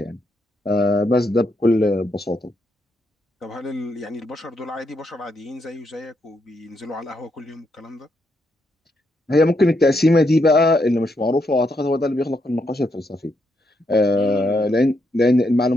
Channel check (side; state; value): both; normal; correlation 0.79